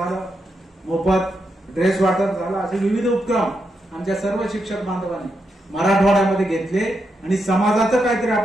मोफत ड्रेस वाटप झालं, असे विविध उपक्रम आमच्या सर्व शिक्षक बांधवांनी मराठवाड्यामध्ये घेतले आणि समाजाचं काहीतरी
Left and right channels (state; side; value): normal; both; correlation 0.84